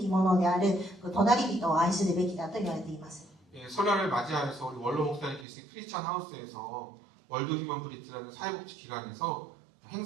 ものである隣人を愛するべきだと言われています。 설날을 맞이하여서 우리 원로 목사님 계신 크리스찬 하우스에서 월드 휴먼 브릿지라는 사회복지 기관에서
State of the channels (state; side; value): drops out; left; at 5.5 s